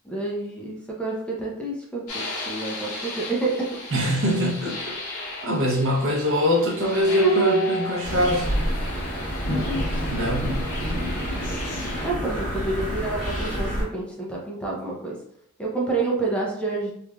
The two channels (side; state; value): both; normal; correlation 0.24